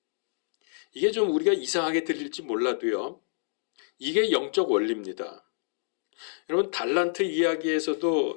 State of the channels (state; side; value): silent; right; digital silence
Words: 이게 좀 우리가 이상하게 들릴지 몰라도요, 이게 영적 원리입니다. 여러분, 달란트